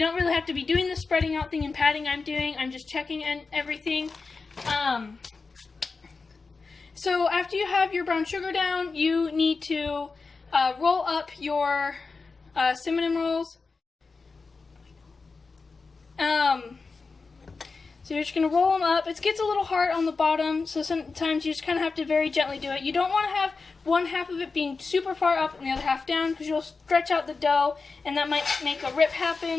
don't really have to be doing the spreading out thing and patting I'm doing. I'm just checking and everything. So after you have your brown sugar down, you need to roll up your cinnamon rolls. So you're just going to roll them up. It gets a little hard on the bottom, so sometimes you just kind of have to very gently do it. You don't want to have one half of it being super far up and the other half down, because you'll stretch out the dough, and that might make a rip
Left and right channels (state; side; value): quieter; right; 4.3 dB